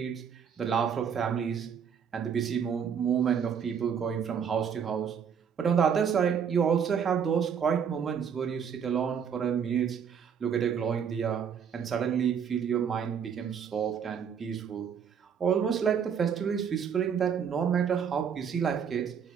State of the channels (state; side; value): quieter; left; 7.4 dB